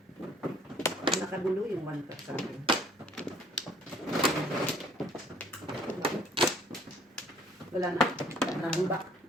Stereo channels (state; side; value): normal; both; correlation 0.58